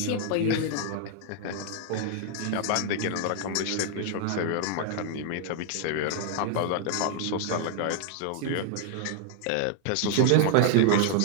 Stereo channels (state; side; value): different; both; correlation 0.00